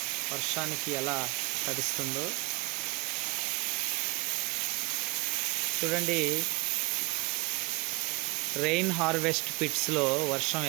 వర్షానికి ఎలా తడుస్తుందో చూడండి. రెయిన్ హార్వెస్ట్ పిట్స్లో వర్షం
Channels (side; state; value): left; quieter; 28.2 dB